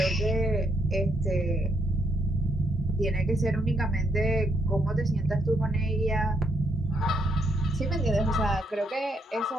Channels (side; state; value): both; normal; correlation 0.75